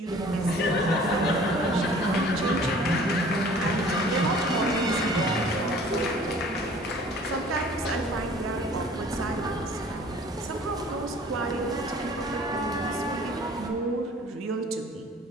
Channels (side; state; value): both; normal; correlation 0.49